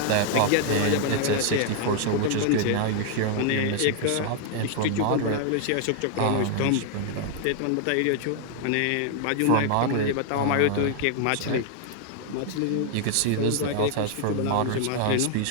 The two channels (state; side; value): different; both; correlation 0.00